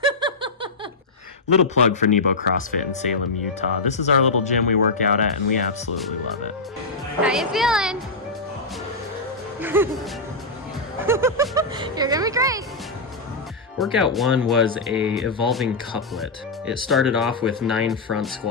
Little plug for Nebo CrossFit in Salem, Utah. This is our little gym we work out at, and we absolutely love it. How you feeling? You're gonna be great. Workout 1 was a evolving couplet. It started off with 9 front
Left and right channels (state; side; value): quieter; right; 3.3 dB